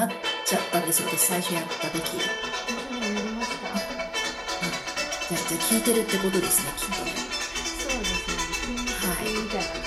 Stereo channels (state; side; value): identical; both; correlation 1.00